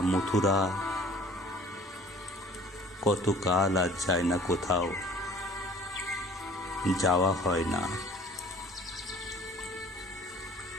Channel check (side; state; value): both; normal; correlation 0.51